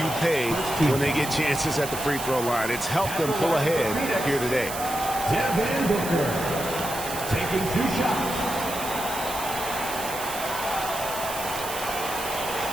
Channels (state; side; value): noise; right; hiss, 8 dB below the sound